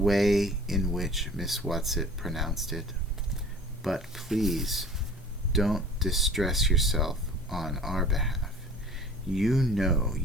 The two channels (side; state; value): both; normal; correlation 0.45